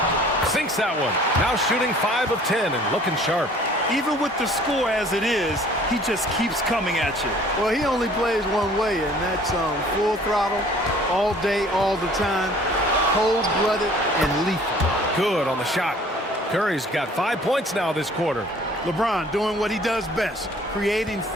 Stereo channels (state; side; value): normal; both; correlation 0.53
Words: Sinks that one. Now shooting 5 of 10 and looking sharp. Even with the score as it is, he just keeps coming at you. Well, he only plays one way, and that's full throttle all day, all the time, cold-blooded and lethal. Good on the shot. Curry's got 5 points now this quarter. LeBron doing what he does best, creating